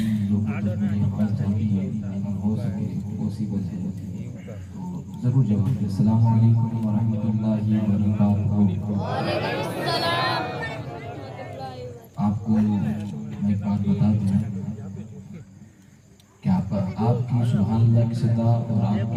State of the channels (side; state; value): both; identical; correlation 1.00